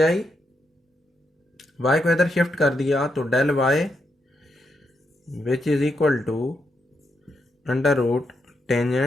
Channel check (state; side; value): normal; both; correlation 0.81